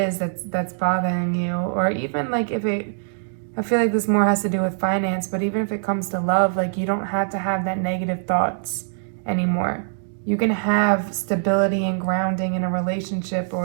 that's bothering you. Or even like I feel like this more has to do with finance, but even if it comes to love, like, you don't have to have that negative thoughts anymore. You can have stability and grounding in a relationship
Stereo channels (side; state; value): left; silent; digital silence